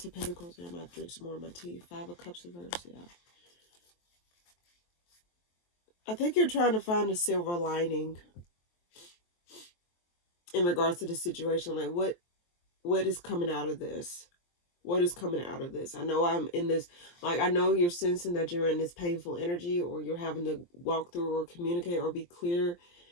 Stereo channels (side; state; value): right; late; 23 ms